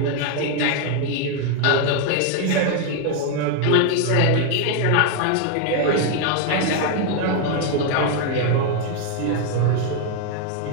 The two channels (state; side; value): different; both; correlation 0.01